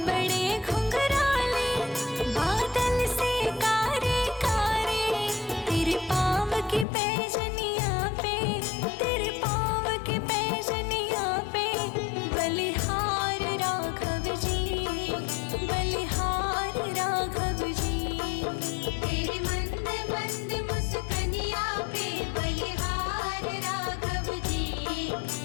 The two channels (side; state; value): right; drops out; at 6.9 s